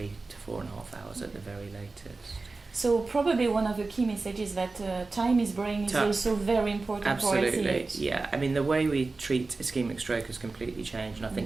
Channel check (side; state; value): left; quieter; 3.7 dB